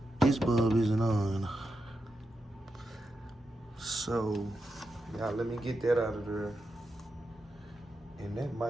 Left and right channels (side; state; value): both; normal; correlation 0.87